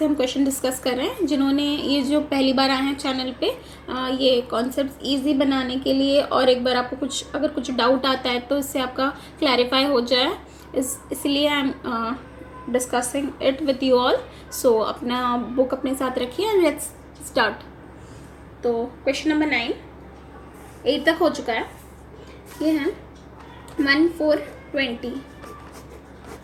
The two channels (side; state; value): both; identical; correlation 1.00